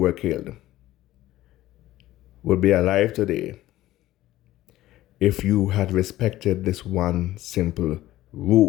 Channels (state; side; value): quieter; right; 15.3 dB